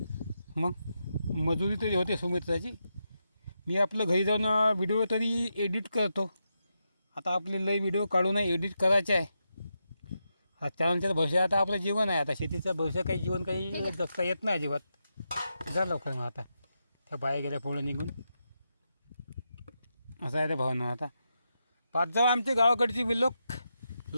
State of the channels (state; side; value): inverted; both; correlation -0.86